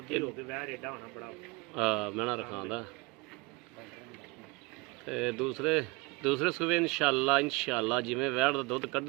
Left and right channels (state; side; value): quieter; left; 25.4 dB